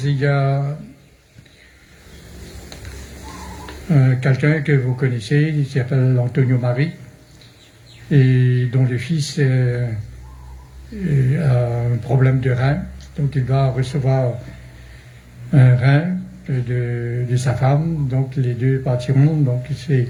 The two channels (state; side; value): identical; both; correlation 1.00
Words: il y a quelqu'un que vous connaissez, il s'appelle Antonio Marie, et dont le fils a un problème de rein, donc il va recevoir un rein de sa femme, donc les deux partiront, donc